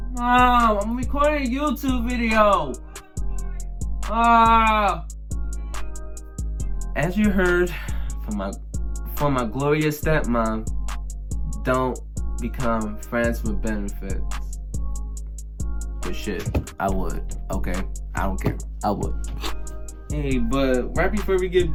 I'm recording a YouTube video. As you heard from my glorious stepmom, don't become friends with benefits. But shit, I would. Okay, I don't care. I would. Hey, but right before we get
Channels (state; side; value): identical; both; correlation 1.00